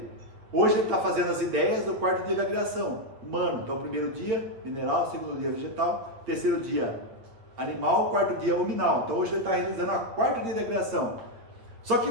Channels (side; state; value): left; late; 8.7 ms